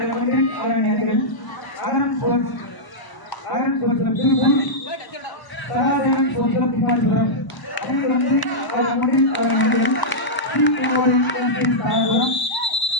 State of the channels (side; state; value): right; late; 1.0 ms